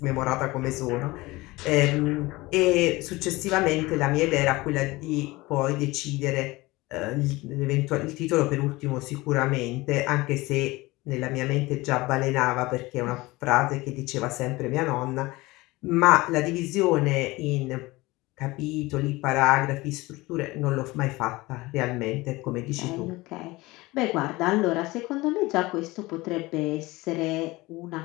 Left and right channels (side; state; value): right; quieter; 21.0 dB